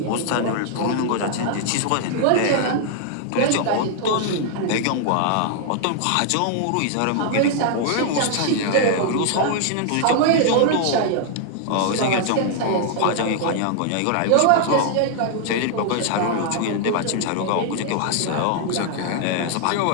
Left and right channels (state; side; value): different; both; correlation 0.00